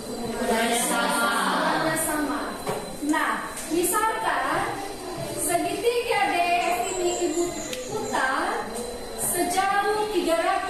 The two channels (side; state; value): both; identical; correlation 1.00